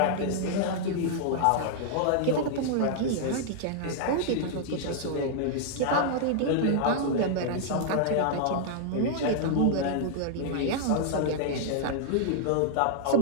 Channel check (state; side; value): different; both; correlation -0.01